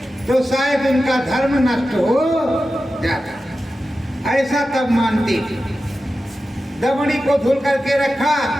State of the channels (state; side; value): normal; both; correlation 0.92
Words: तो शायद उनका धर्म नष्ट हो जाता, ऐसा तब मानते थे। दमड़ी को धुल करके रखा,